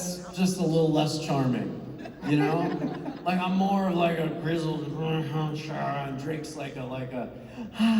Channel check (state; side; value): identical; both; correlation 1.00